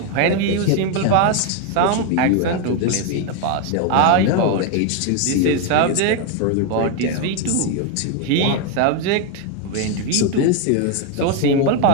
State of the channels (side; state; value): both; different; correlation 0.01